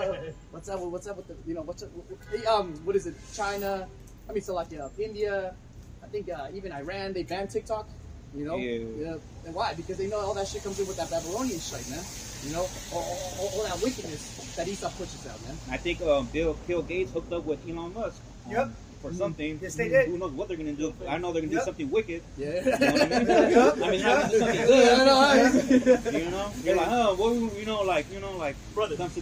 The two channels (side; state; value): both; identical; correlation 1.00